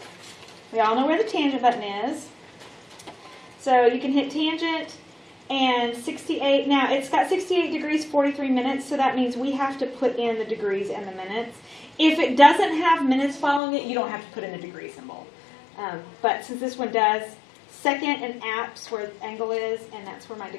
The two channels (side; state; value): right; drops out; at 13.6 s